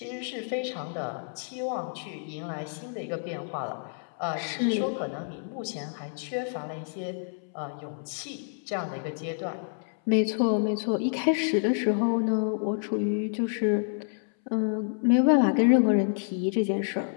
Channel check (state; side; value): silent; right; 59 dB below the other